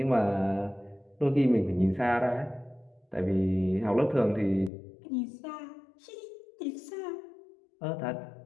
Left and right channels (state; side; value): drops out; right; at 4.7 s